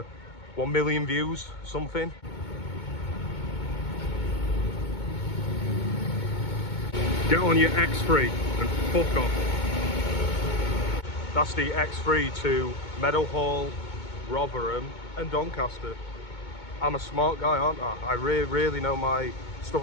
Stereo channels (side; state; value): right; late; 2.2 ms